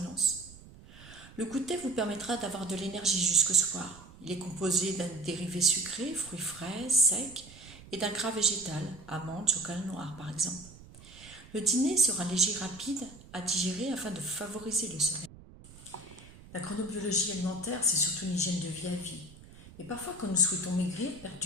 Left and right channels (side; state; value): right; noise; rumble, 20 dB below the sound